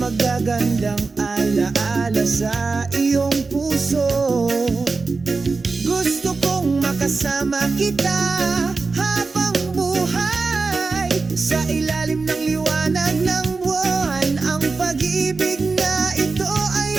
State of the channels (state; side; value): quieter; left; 4.1 dB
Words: magagandang alaala sa iyong puso. Gusto kong makasama kita habang buhay, sa ilalim ng liwanag ng buwan. Ang pag-ibig na ito